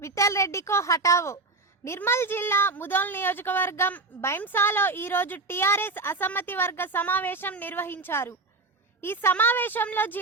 विठल रेड्डी को हटावो। నిర్మల్ జిల్లా ముదోల్ నియోజకవర్గం బైంసాలో ఈ రోజు టీఆర్ఎస్ అసమ్మతి వర్గ సమావేశం నిర్వహించారు। ఈ సమావేశంలో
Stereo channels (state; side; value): quieter; left; 3.5 dB